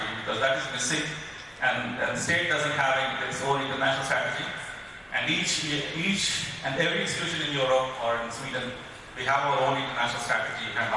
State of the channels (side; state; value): both; identical; correlation 1.00